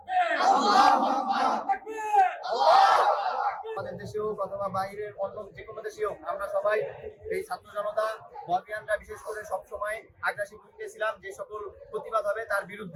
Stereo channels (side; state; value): both; identical; correlation 1.00